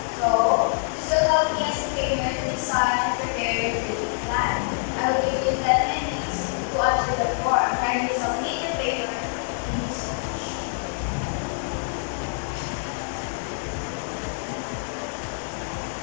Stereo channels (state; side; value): silent; right; digital silence